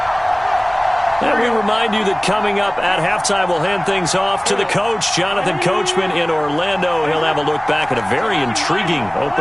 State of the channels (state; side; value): noise; right; rumble, 26 dB below the sound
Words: And we remind you that coming up at halftime, we'll hand things off to the coach, Jonathan Coachman in Orlando. He'll have a look back at a very intriguing